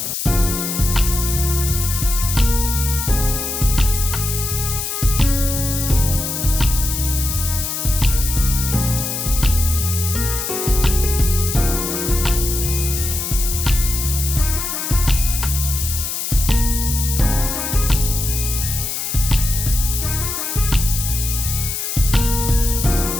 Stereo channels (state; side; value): noise; left; hiss, 3 dB below the sound